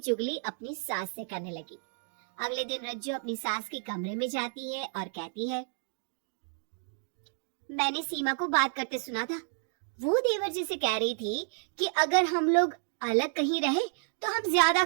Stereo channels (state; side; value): silent; left; digital silence